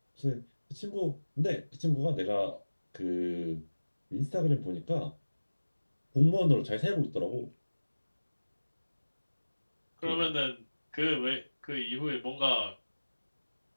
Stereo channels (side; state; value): both; inverted; correlation -1.00